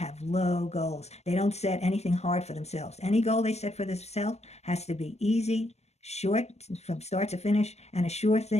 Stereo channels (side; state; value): right; late; 0.32 ms